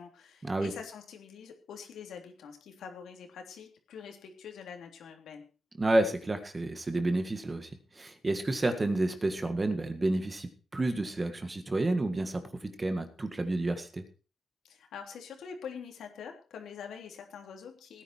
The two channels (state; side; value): normal; both; correlation 0.94